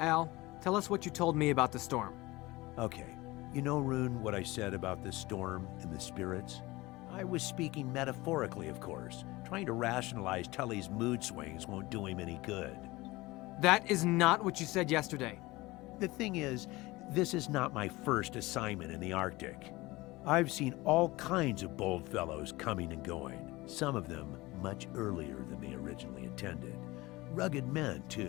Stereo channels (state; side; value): quieter; right; 20.8 dB